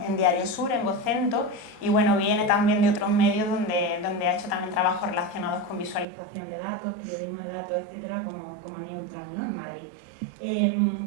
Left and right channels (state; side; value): drops out; left; at 6.1 s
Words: en Diario Sur, en Vocento, y bueno, viene también de otros medios donde ha hecho también trabajos relacionados con visualización de datos, periodismo de datos, etcétera, como Neutral, ¿no? En Madrid.